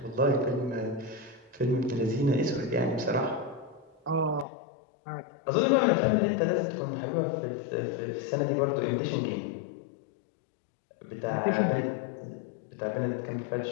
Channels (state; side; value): drops out; right; at 4.5 s